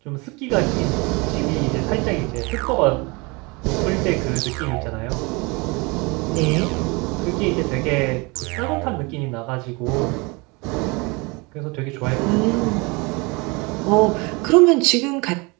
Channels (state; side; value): quieter; left; 27.2 dB